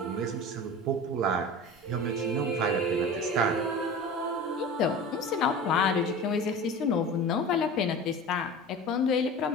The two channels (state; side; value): normal; both; correlation 0.35